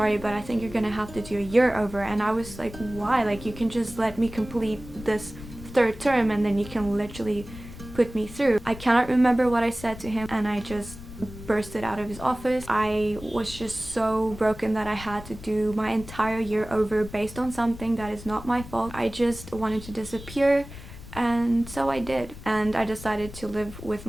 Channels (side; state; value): left; noise; rumble, 14 dB below the sound